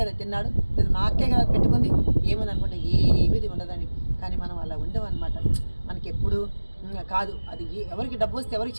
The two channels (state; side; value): inverted; both; correlation -1.00